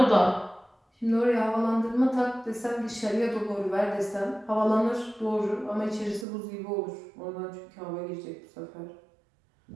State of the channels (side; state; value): left; drops out; at 6.2 s